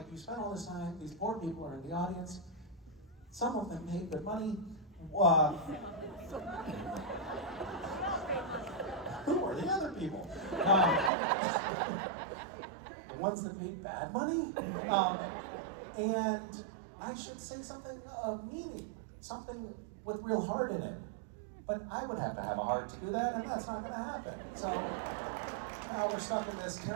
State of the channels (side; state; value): left; drops out; at 11.1 s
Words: you spent all this time, these poor people are in the audience, some of them paid good money. Who are the other people? The ones that paid bad money? And I should say something of meaning, something with real heart in it. But I would have to have a heart to do that, and that's not going to happen. So now we're stuck in this